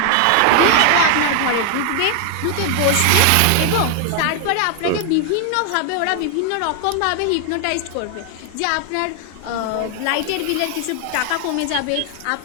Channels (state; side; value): different; both; correlation 0.00